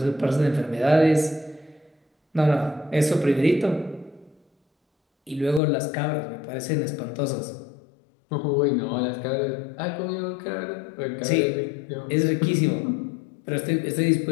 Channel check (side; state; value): right; drops out; at 5.6 s